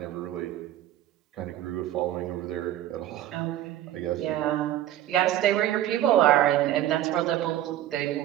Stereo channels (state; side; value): quieter; left; 12.9 dB